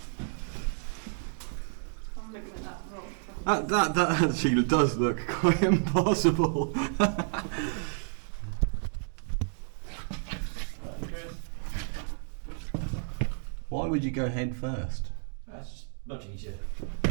I'm looking at that rock. That actually does look quite impossible. Why would you go head first? That's just much easier.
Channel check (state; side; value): silent; left; digital silence